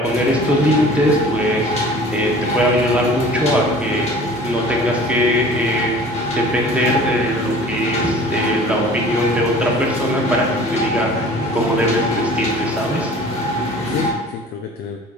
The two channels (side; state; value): both; normal; correlation 0.46